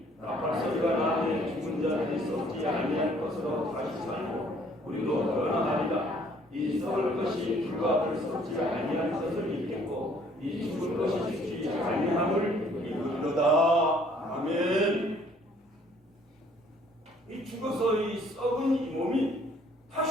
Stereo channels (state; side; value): normal; both; correlation 0.60